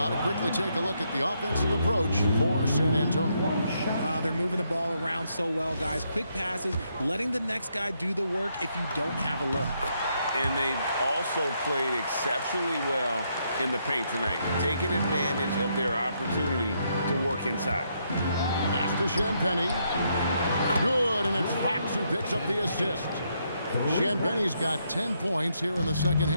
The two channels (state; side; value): inverted; both; correlation -0.76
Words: to quickly take a look at the offensive approach for San Antonio. They're moving the ball around so well, guys. Quick passes, letting the next guy do the work if you don't have a look. And they've also played exceptionally well in the paint tonight, taking advantage of their opportunity to work inside. Pass to Champagnie. Good, and it's Fox who picks up the assist. Champagnie's got 10 points here in the second